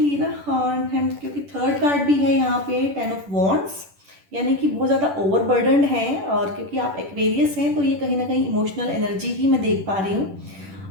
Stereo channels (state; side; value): late; left; 10 ms